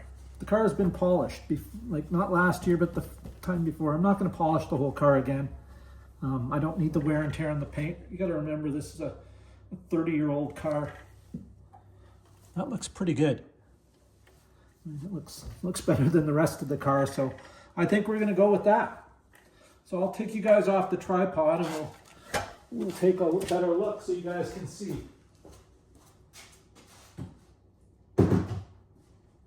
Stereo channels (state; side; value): identical; both; correlation 1.00